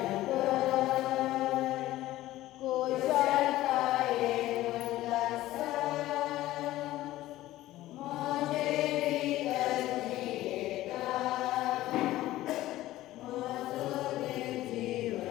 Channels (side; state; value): right; quieter; 15.7 dB